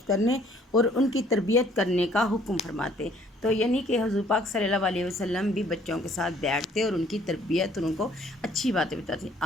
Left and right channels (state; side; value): normal; both; correlation 0.60